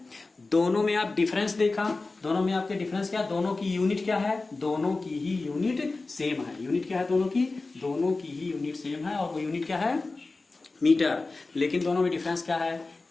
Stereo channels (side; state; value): right; quieter; 3.5 dB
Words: दोनों में आप डिफरेंस देखा, दोनों में आपके डिफरेंस क्या, दोनों की यूनिट क्या है, दोनों की ही यूनिट सेम है। यूनिट क्या है दोनों की ही यूनिट सेम है, और वो यूनिट क्या है, मीटर। लेकिन दोनों में डिफरेंस क्या है